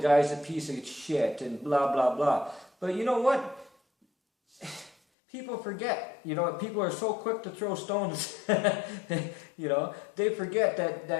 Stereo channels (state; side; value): drops out; right; at 5.0 s